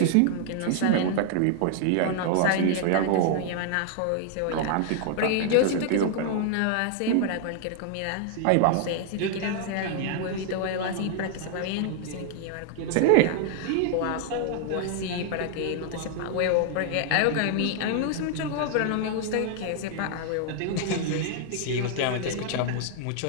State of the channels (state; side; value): different; both; correlation 0.00